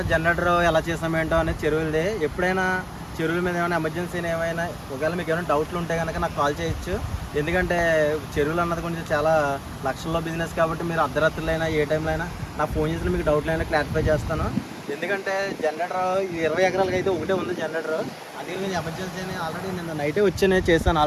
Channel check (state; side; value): identical; both; correlation 1.00